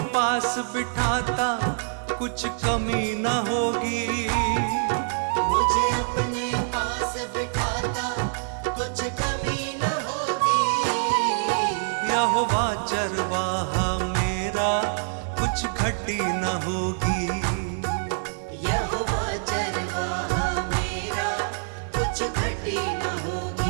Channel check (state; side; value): silent; left; digital silence